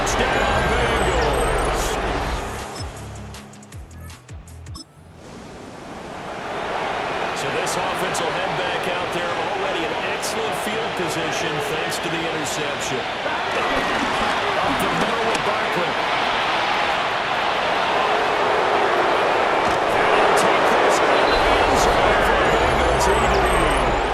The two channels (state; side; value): identical; both; correlation 1.00